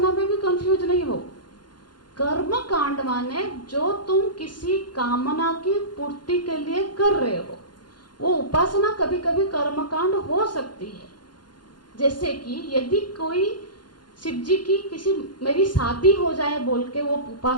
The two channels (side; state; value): right; late; 0.71 ms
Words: में भी कंफ्यूज नहीं हो। कर्मकांड माने जो तुम किसी कामना की पूर्ति के लिए कर रहे हो, वो उपासना कभी कभी कर्मकांड हो सकती है। जैसे कि यदि कोई शिव जी की किसी मेरी शादी हो जाए बोल के वो